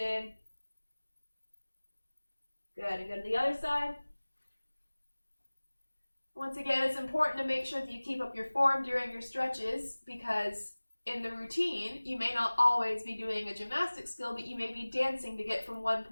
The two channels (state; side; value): inverted; both; correlation -1.00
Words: Good, and go to the other side. Once again, it's important to make sure that you keep up your form during your stretches because in the routine, you may not always be doing a gymnastic skill, but you may be dancing to get from one